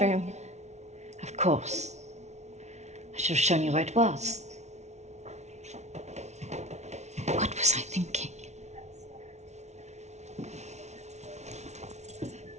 Of course. I should have shown you where it was. What was I thinking?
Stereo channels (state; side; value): late; left; 0.32 ms